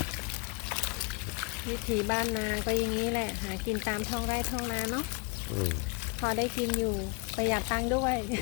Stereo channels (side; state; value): right; quieter; 29.4 dB